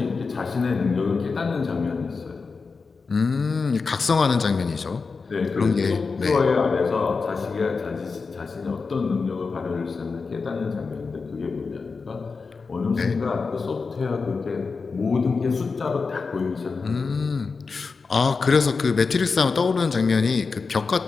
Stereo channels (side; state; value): right; quieter; 4.6 dB